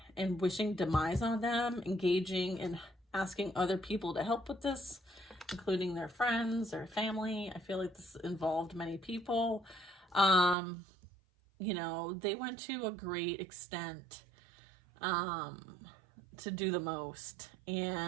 and wishing demise on them, engaging and asking other people to help with this, including their friends or family. I feel like this involved many people. You know, they went to a great extent to do the most,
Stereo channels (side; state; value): left; drops out; at 10.6 s